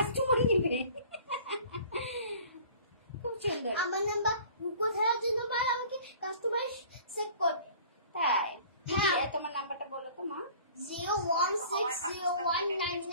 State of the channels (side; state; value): both; inverted; correlation -0.48